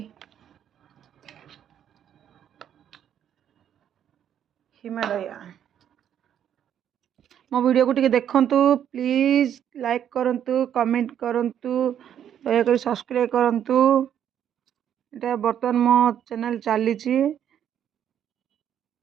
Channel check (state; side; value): quieter; left; 9.6 dB